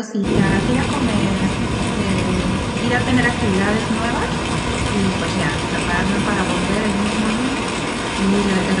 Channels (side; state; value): both; identical; correlation 1.00